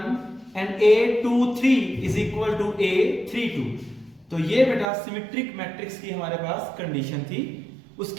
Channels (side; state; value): left; drops out; at 4.9 s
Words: and A23 is equal to A32। तो ये बेटा symmetric matrix की हमारे पास condition थी।